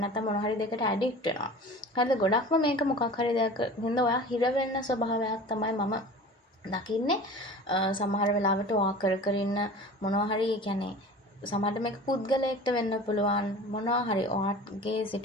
නැත්නම් මොනවා හරි දෙයකට ඇඩික්ට් වෙනවා. හරිද? ගොඩක්ම මේක මොකක් හරි දෙයක් හින්දා ඔයා හිර වෙන්න ස්වභාවයක් තමයි මම දකින්නේ. සමහර වෙලාවට ඔයා කර ඉන්න මොනවා හරි කියන්නේ සමහරට මේක පුද්ගලයෙක්ට වෙන්න පුළුවන් මොනවා හරි ඔයාගේ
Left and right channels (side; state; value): both; normal; correlation 0.39